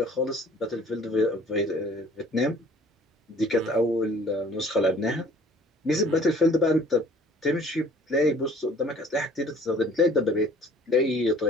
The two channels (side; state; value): both; normal; correlation 0.53